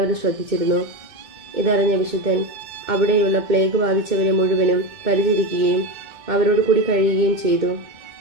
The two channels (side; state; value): left; late; 2.2 ms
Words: ശ്രദ്ധിച്ചിരുന്നു. ഇതറിഞ്ഞ വിശുദ്ധൻ അവിടെയുള്ള പ്ലേഗ് ബാധിച്ചവരെ മുഴുവനും പരിചരിക്കുകയും അവരോട് കൂടി കഴിയുകയും ചെയ്തു.